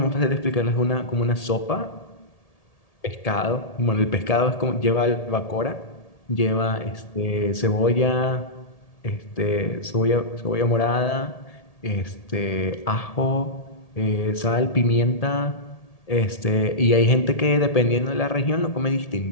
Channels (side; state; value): right; late; 1.8 ms